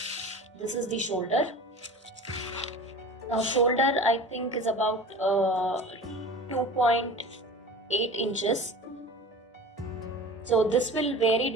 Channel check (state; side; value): normal; both; correlation 0.37